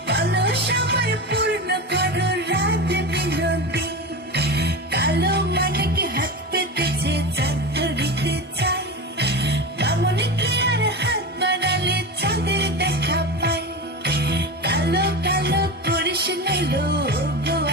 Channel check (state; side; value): normal; both; correlation 0.24